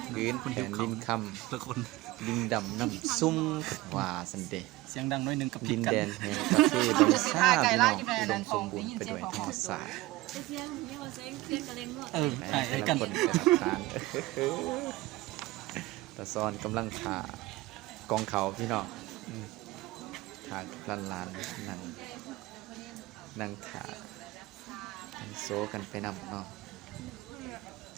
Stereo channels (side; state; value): left; quieter; 18.9 dB